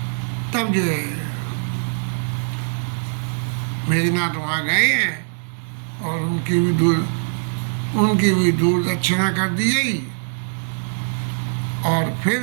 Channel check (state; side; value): silent; left; 64 dB below the other